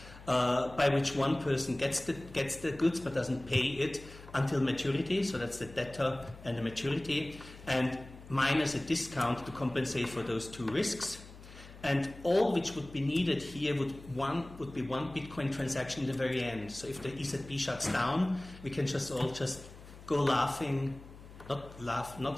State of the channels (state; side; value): noise; left; hum, 18 dB below the sound